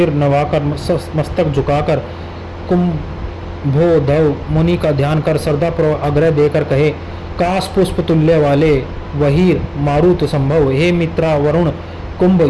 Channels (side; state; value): both; identical; correlation 1.00